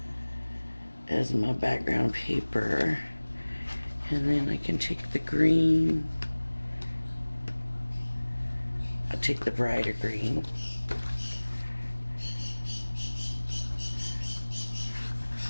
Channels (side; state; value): both; inverted; correlation -1.00